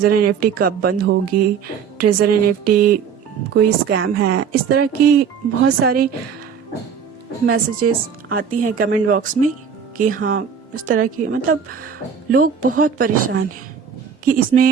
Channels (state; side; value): quieter; left; 7.0 dB